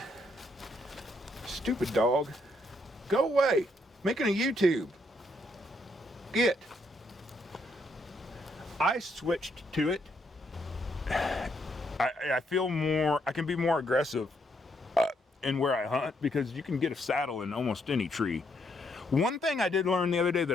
Stupid dog, go away! Making a YouTube. Get. I switched to it. I feel more, I can be more aggressive in where I hunt, because you can get a saddle in almost any tree. One thing I did learn the other day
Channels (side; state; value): both; normal; correlation 0.74